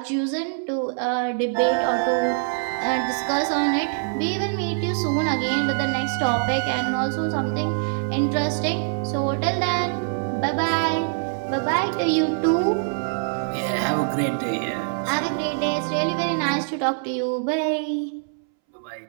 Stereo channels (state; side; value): silent; left; 63 dB below the other